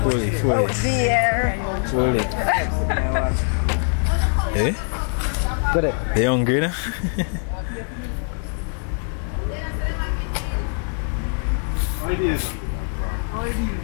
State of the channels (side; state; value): right; silent; 55 dB below the other